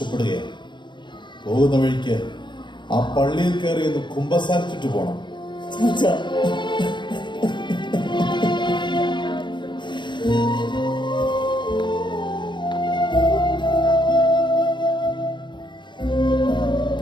പോകുന്ന വഴിക്ക് ആ പള്ളിയിൽ കയറി ഒന്ന് കുമ്പസാരിച്ചിട്ട് പോണം. ചാച്ച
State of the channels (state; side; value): late; right; 0.22 ms